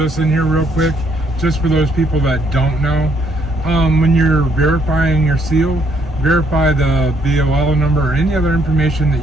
in here real quick, just for those people that don't know. When you're verifying your seal, verify the BOL number or any other information that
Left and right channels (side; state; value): both; normal; correlation 0.69